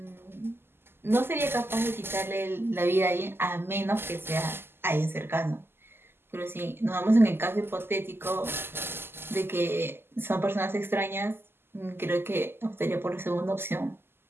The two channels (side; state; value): left; late; 0.11 ms